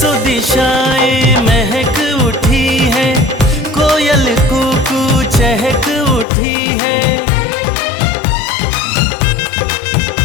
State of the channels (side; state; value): right; drops out; at 6.2 s